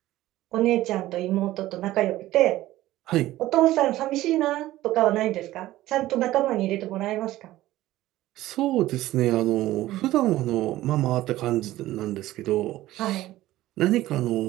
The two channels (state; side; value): quieter; left; 15.8 dB